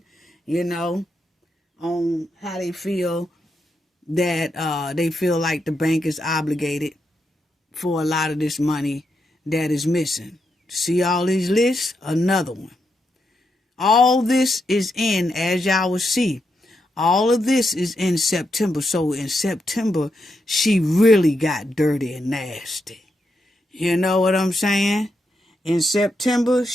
on how they feel that they feel like the bank is obligated for a lot of this money that is missing. See all these lists? Another one. All this is in, as y'all will see, all of this is in September. So in September, she really got dirty and nasty. You know what I'm saying? In September,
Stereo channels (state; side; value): normal; both; correlation 0.83